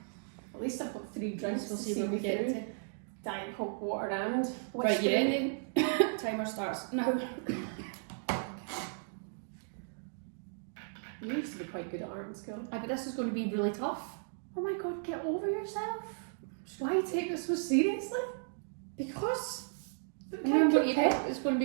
At least I've got 3 drinks We'll to see see where me we get through. to. Diet Coke, water and... Right, you whiskey. ready? Timer starts now. You used to be quite good at art in school. I bet this is going to be really tough. Oh my god, get over yourself. Why take this so seriously? Because Look remember, it's going to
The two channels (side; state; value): left; silent; digital silence